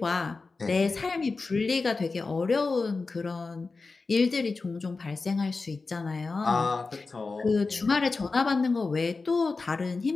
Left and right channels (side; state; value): right; quieter; 4.0 dB